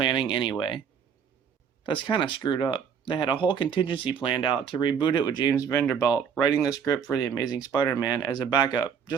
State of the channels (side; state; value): left; quieter; 7.2 dB